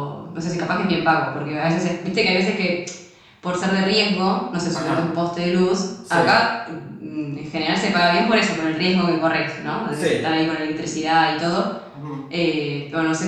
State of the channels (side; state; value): both; identical; correlation 1.00